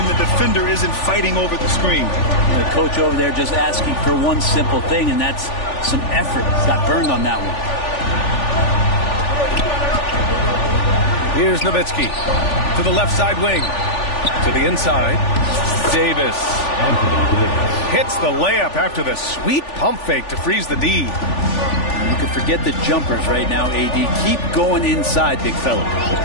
the defender isn't fighting over the screen. The coach over there just asking for one simple thing, and that's some effort. Got burned on that one. Here's Nowitzki to the left side wing. To the inside. Davis hits the layup after the sweet pump fake to freeze the D. You can forget the jumpers right now, AD. Keep going inside, big fella.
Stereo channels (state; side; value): late; right; 3.4 ms